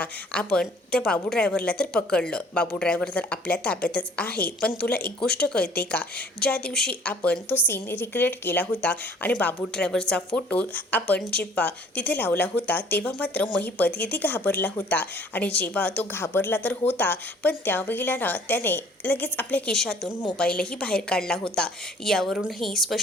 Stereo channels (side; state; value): both; normal; correlation 0.55